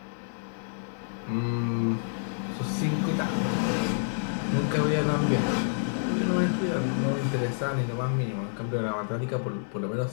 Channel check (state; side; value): silent; right; digital silence